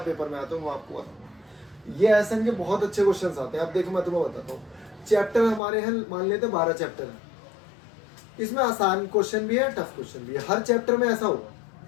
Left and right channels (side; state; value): right; drops out; at 5.6 s